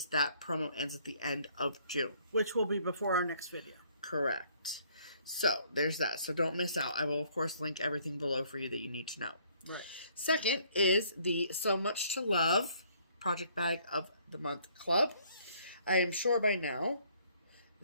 that promo ends at the end of June. Which will be before our next video. Correct. So there's that. So don't miss out. I will, of course, link everything below for you that you need to know. Right. Second is the SewMuch2Luv Project Bag of the Month Club. I am sure by now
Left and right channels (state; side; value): inverted; both; correlation -0.62